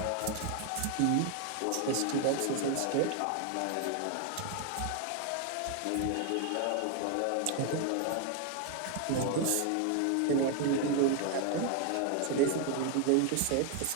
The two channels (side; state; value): both; different; correlation 0.01